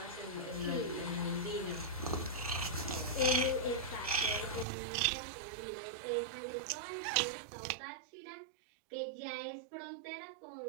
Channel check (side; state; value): left; drops out; at 4.7 s